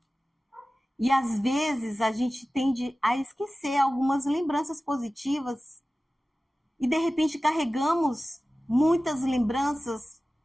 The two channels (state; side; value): normal; both; correlation 0.96